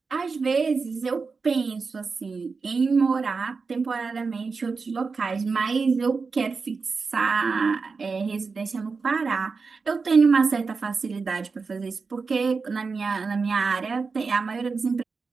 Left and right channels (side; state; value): left; quieter; 4.7 dB